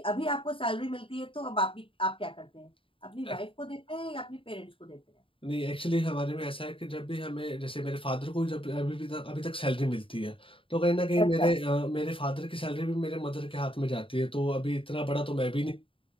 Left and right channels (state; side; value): late; right; 0.26 ms